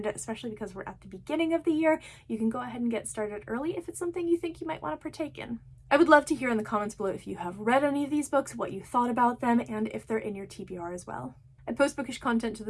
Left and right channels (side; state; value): both; identical; correlation 1.00